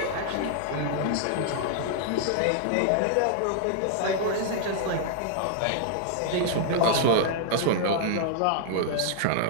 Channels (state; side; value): different; both; correlation -0.01